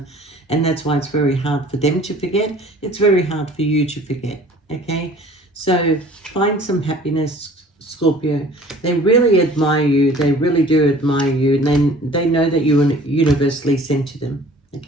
And that's why it's very hard for them to forget. It's very hard for you to forget, okay? So find some happiness, Scorpio. They really admire you. They really do admire you. And they know that you are universally sent to them,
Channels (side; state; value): both; normal; correlation 0.49